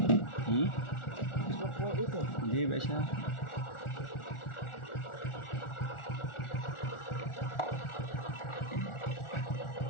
papuay ito. Hindi ba siya?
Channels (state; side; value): late; right; 1.4 ms